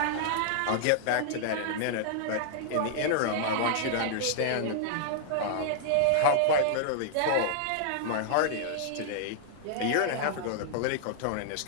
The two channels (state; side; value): different; both; correlation -0.01